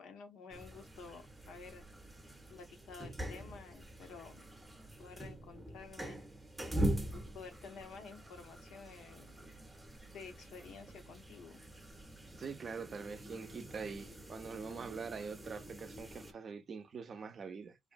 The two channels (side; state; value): both; normal; correlation 0.84